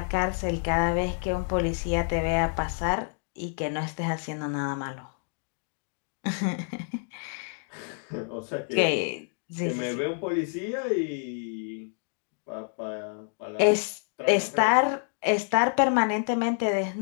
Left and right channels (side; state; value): right; silent; 59 dB below the other